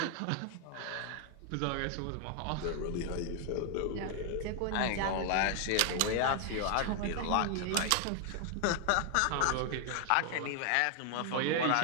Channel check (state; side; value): different; both; correlation 0.00